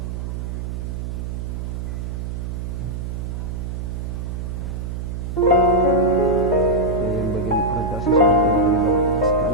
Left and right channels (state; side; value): noise; right; hum, 5 dB below the sound